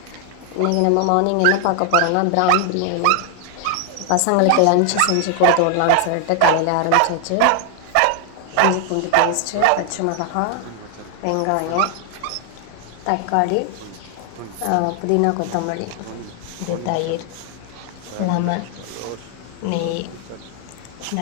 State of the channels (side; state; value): both; different; correlation 0.00